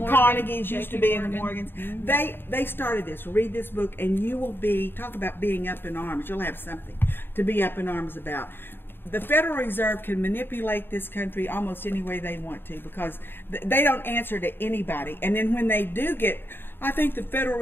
Carnegies used to JP be in the Morgan. Morgans. They started this. Read this book, and you will talk about being up in arms. You'll have something to be up in arms about. the Federal Reserve can manipulate this country almost any way they want to, because they don't answer to anybody. And then when they do get, I think the Federal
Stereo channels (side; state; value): right; late; 0.10 ms